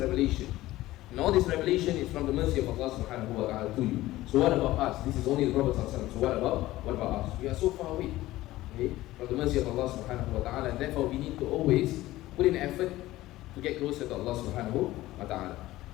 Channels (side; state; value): right; quieter; 16.7 dB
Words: And all this revelation is from the mercy of Allah subhanahu wa ta'ala to you. So what about us? This is only the Prophet sallallahu alayhi wa sallam. So what about us? We are so far away, okay, from the mercy of Allah subhanahu wa ta'ala, and therefore we need to always put in effort to get closer to Allah subhanahu wa ta'ala.